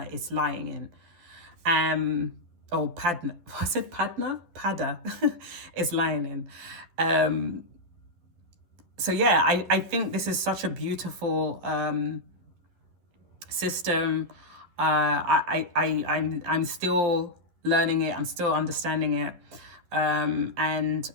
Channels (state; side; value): late; left; 11 ms